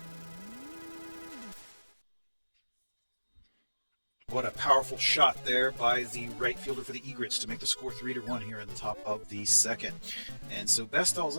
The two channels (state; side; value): inverted; both; correlation -1.00